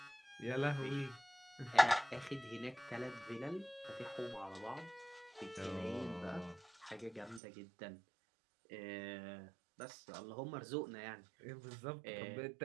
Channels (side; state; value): left; drops out; at 7.4 s